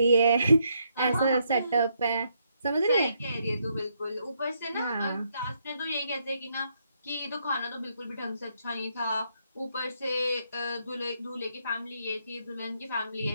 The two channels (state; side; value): inverted; both; correlation -0.75